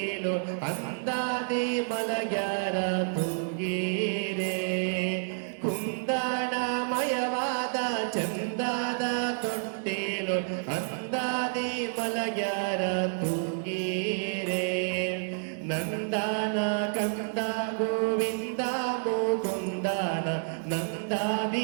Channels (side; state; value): left; silent; 58 dB below the other